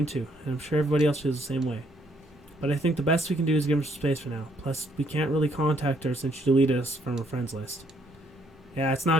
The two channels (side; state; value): both; normal; correlation 0.69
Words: too, and I'm sure everybody else feels the same way. But I think the best we can do is give her some space for now. Plus, we can't really contact her since she deleted us from her friends list. Yeah, it's